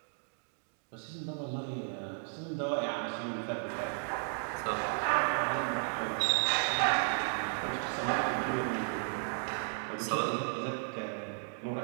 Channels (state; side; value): silent; left; 55 dB below the other